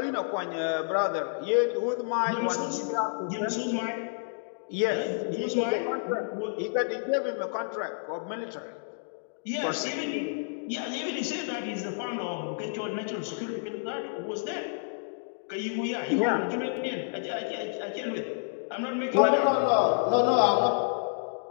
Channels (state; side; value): silent; right; digital silence